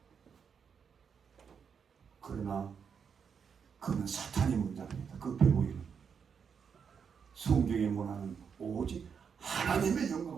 그러나 그는 사탄의 문장입니다. 그 배우에는 성경의 문화는 오직 하나님의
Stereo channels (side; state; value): left; quieter; 6.7 dB